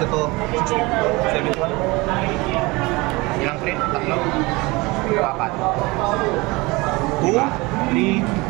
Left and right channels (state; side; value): quieter; left; 23.7 dB